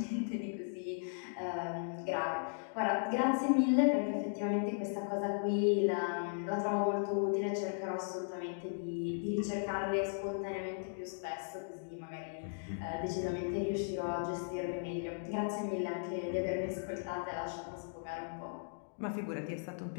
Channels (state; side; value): silent; right; digital silence